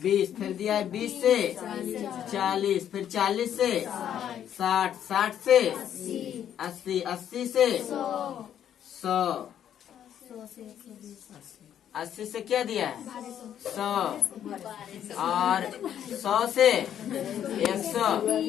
20, फिर दिया है 20 से 40, फिर 40 से 60, 60 से 80, 80 से 100, 80 से क्या दिया है 100 और 100 से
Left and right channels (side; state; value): right; quieter; 9.9 dB